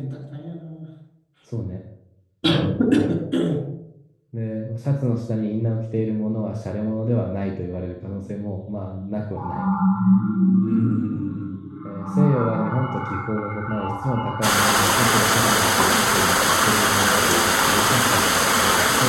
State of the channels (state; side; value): identical; both; correlation 1.00